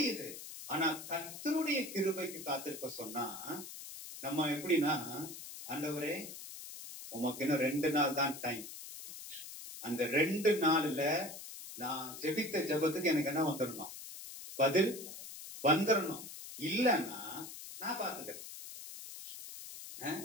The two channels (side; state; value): left; noise; hiss, 11 dB below the sound